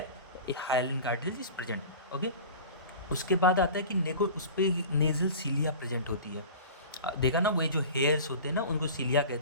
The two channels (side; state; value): both; inverted; correlation -0.37